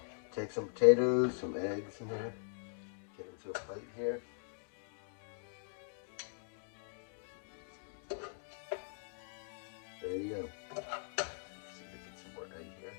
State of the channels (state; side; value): silent; right; digital silence